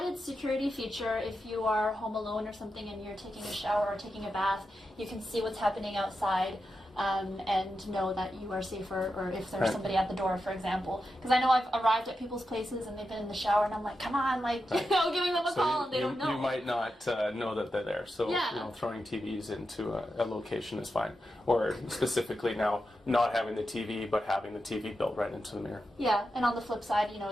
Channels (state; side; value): normal; both; correlation 0.89